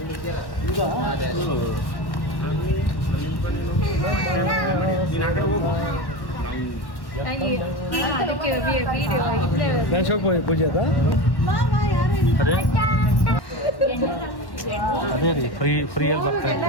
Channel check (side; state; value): right; late; 1.1 ms